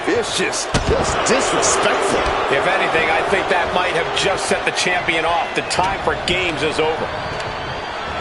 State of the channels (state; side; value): identical; both; correlation 1.00